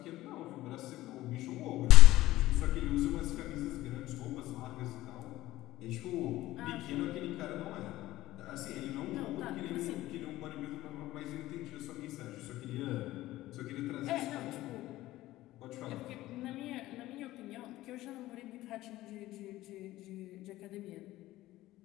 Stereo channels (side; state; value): right; quieter; 16.3 dB